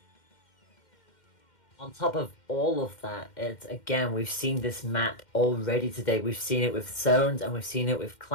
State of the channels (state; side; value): late; right; 2.1 ms